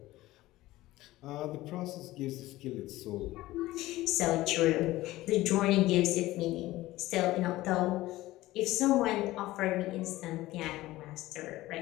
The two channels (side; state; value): right; quieter; 17.2 dB